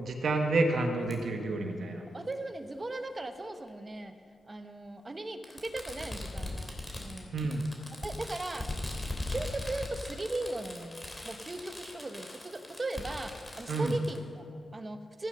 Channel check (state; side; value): normal; both; correlation 0.88